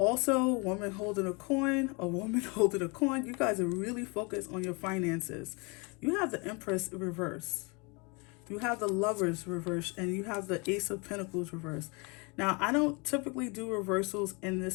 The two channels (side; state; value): right; quieter; 30.3 dB